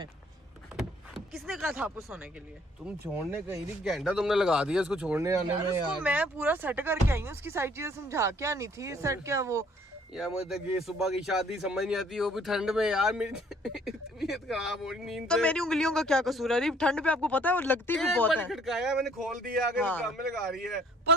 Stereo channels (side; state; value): both; normal; correlation 0.60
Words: किसने कहा था आपको सोने के लिए? तुम छोड़ने कहीं थी, घंटा तुमने लगा दिया इसको छोड़ने आने यार में उसको यार। मैं पूरा सेट करके आई हूँ, उसकी सारी चीजें समझा के आनी थी। सेट क्या वो यार मुझे तो ये सुबह की शादी समझ नहीं आती, वो भी ठंड में यार। मेरी तबीयत खराब हो रही नींद तो से। मेरी उंगलियों का क्या कसूर है? अरीब ठंड पे आपको पता है वो लगती भी एक बहुत बार है। खटकाया मैंने, खोल दिया, आगे हाँ। काम में लगा रही है।